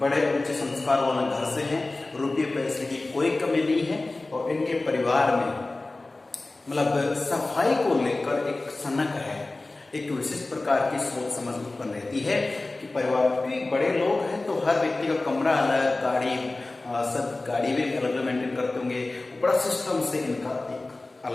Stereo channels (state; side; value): quieter; right; 3.1 dB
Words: बड़े ऊंचे संस्कार वाले घर से है, रुपये पैसे की कोई कमी नहीं है। और इनके परिवार में मतलब सफाई को लेकर एक सनक है, एक विशिष्ट प्रकार की सोच समझ उत्पन्न रहती है कि परिवार के बड़े लोग हैं तो हर व्यक्ति का कमरा अलग, गाड़ी सब गाड़ी भी अलग अलग मेंटेन करते होंगे, बड़ा सिस्टम से इनका एक